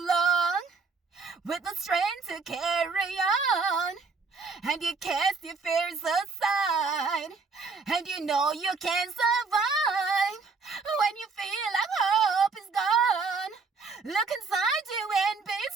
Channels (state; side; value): quieter; left; 4.6 dB